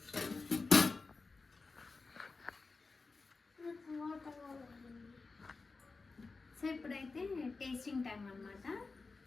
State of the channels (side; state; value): right; quieter; 4.0 dB